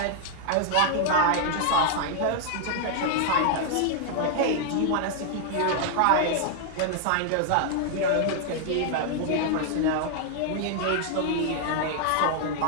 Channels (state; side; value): different; both; correlation 0.00